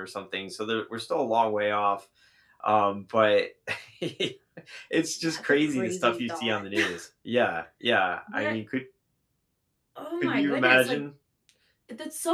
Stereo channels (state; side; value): identical; both; correlation 1.00